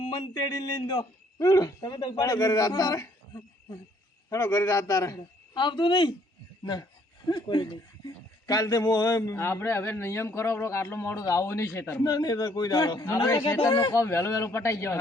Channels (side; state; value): both; normal; correlation 0.64